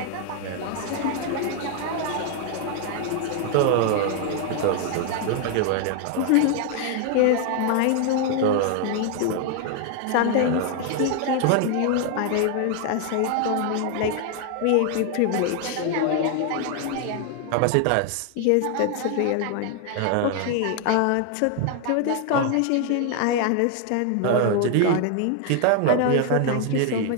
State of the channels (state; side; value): different; both; correlation 0.00